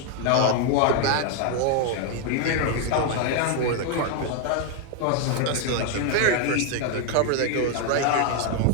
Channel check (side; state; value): both; different; correlation 0.00